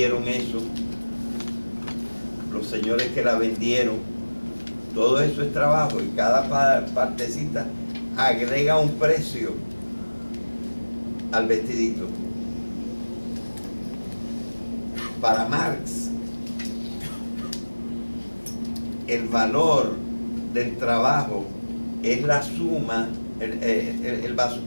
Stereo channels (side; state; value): both; inverted; correlation -1.00